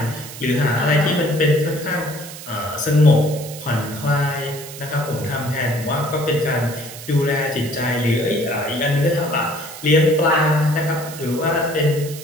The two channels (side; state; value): right; noise; hiss, 13 dB below the sound